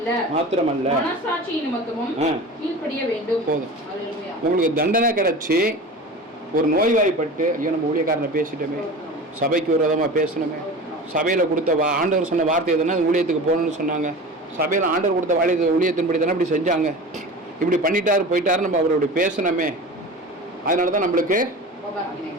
மாத்திரமல்ல போதும். உங்களுக்கு தண்டனை கிடைச்சி ஒரு நோய்வாய்ப்பட்டு ஐயோ நம்ம ஊழியக்காரனை பேசிட்டோமே, சபைக்கு விரோதமாக பேசணுமே, சபையில் கொடுத்த ஆண்டவர் சொன்ன வார்த்தை எதுனா ஊழியத்துக்கு போகணும்னு சொன்னாங்க, சபையில் ஆண்டவர் கொடுத்த ஊழியத்தின்படி தானே இப்படி செஞ்சாங்க, இப்படி பண்ணிட்டாரு போயிட்டாரு, நம்ம அவருடைய பேசணுமே, அதனால தான் நம்மளுக்கு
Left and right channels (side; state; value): both; normal; correlation 0.34